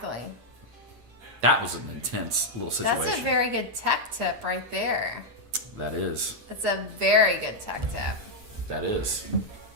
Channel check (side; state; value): left; late; 8.6 ms